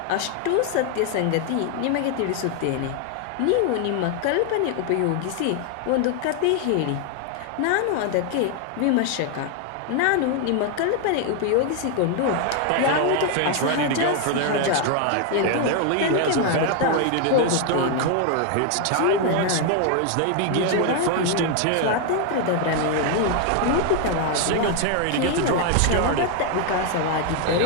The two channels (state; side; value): different; both; correlation 0.00